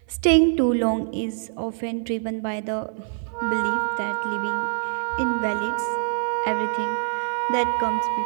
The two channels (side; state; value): left; silent; 59 dB below the other